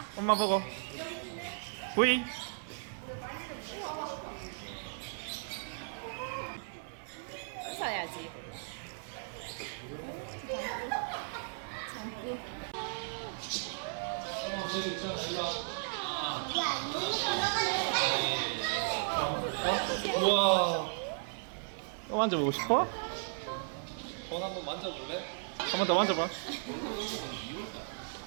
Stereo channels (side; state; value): left; silent; 54 dB below the other